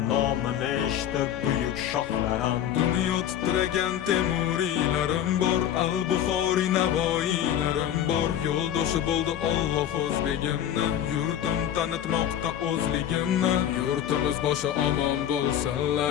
nomini eshitib buyuk shohlarim. Dunyo titragan temuriylarim bor, al-Buxoriy navoiylarim bor. Yo'ldoshi bo'ldi Alloh o'zligimni, yurtim tanitmoqda o'zligimni. Yurtimiz boshi omon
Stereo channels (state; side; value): quieter; right; 10.5 dB